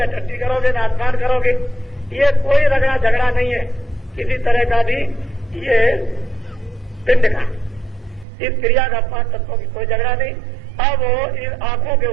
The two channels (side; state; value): left; drops out; at 8.2 s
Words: टट्टी करोगे, न स्नान करोगे। ये कोई रगड़ा झगड़ा नहीं है किसी तरह का भी। ये पिंड का इस क्रिया का 5 तत्वों की कोई झगड़ा नहीं। अब इन आंखों के